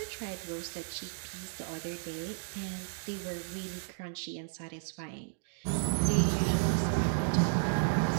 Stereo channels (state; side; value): silent; left; digital silence